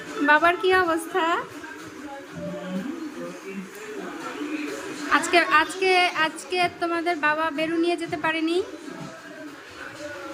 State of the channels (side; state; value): both; identical; correlation 1.00